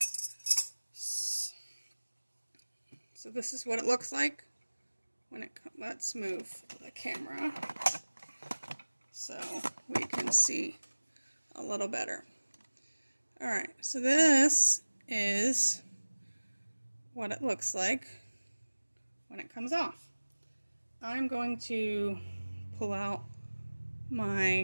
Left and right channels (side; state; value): both; inverted; correlation -1.00